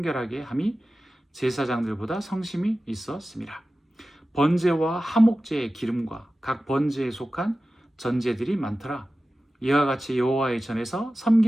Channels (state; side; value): normal; both; correlation 0.95